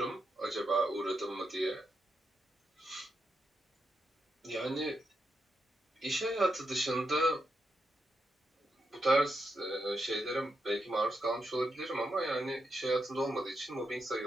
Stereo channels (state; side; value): normal; both; correlation 0.84